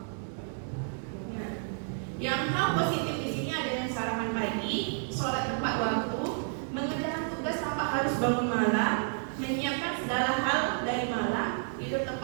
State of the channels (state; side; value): silent; left; digital silence